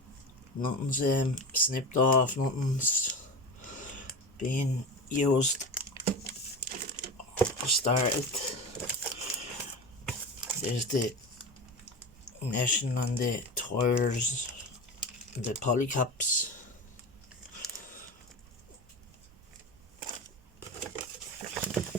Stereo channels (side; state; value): both; normal; correlation 0.26